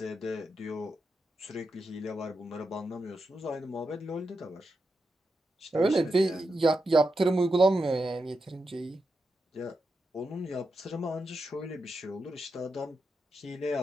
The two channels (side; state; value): both; normal; correlation 0.87